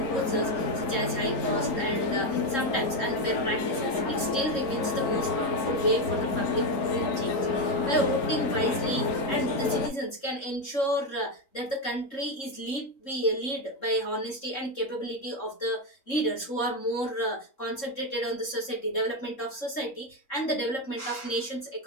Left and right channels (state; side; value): late; right; 3.7 ms